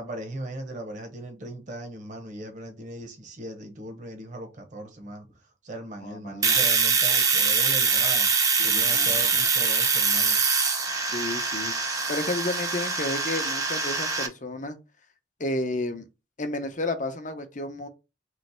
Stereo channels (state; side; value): quieter; left; 3.7 dB